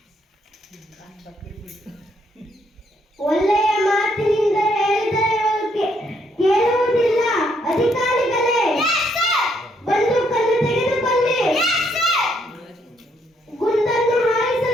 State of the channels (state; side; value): normal; both; correlation 0.72